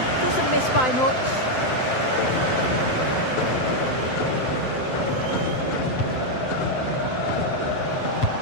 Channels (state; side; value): late; right; 7.7 ms